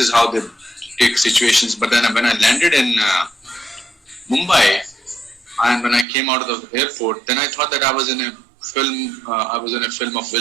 how they take situations. But then when I landed in Mumbai, and when I came out of the airport, then I thought that I was in a film. I was in a film of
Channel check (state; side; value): drops out; left; at 6.1 s